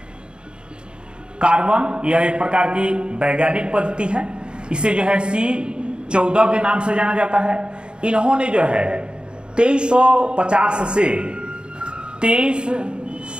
कार्बन यह एक प्रकार की वैज्ञानिक पद्धति है। इसे जो है C14 के नाम से जाना जाता है। इन्होंने जो है 2350 से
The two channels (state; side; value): late; left; 0.052 ms